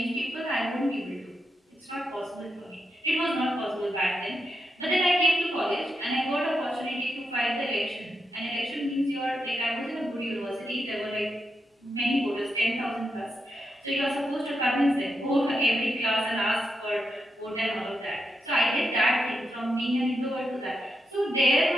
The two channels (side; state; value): both; normal; correlation 0.85